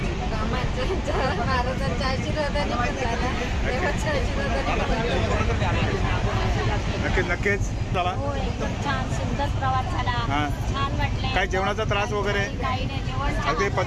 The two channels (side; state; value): both; identical; correlation 1.00